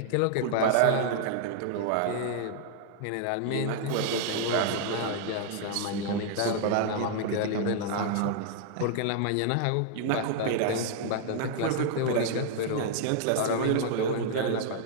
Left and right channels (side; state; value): both; different; correlation -0.01